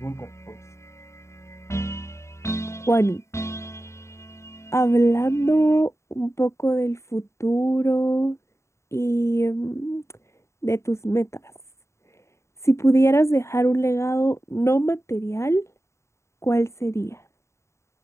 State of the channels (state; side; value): late; right; 0.14 ms